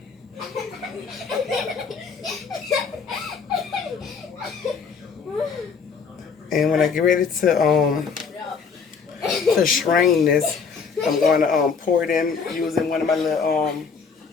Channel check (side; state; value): right; quieter; 5.7 dB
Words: And when I get ready to strain this, I'm going to pour it in using one of my little